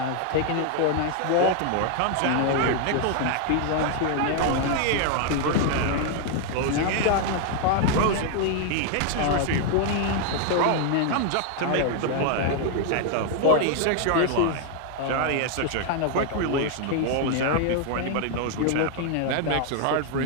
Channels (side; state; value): both; different; correlation 0.00